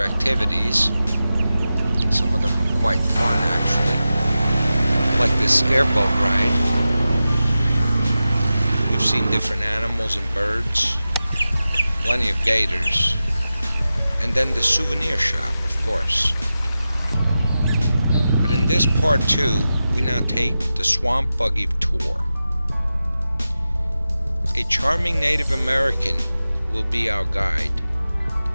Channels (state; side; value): inverted; both; correlation -0.93